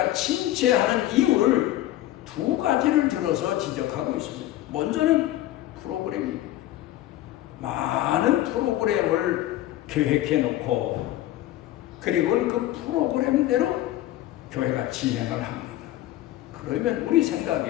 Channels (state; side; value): quieter; right; 14.6 dB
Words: 침체하는 이유를 두 가지를 들어서 지적하고 있습니다. 먼저는 프로그램입니다. 많은 프로그램을 계획해 놓고 그리고 그 프로그램대로 교회가 진행을 합니다. 그러면 우리